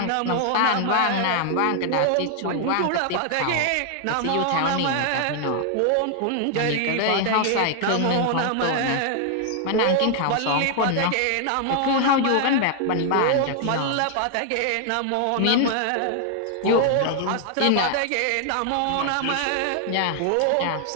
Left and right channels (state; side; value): different; both; correlation 0.00